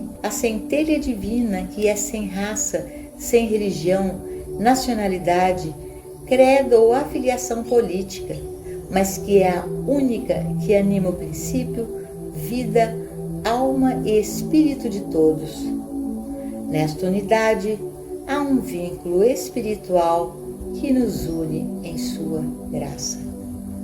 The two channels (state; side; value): identical; both; correlation 1.00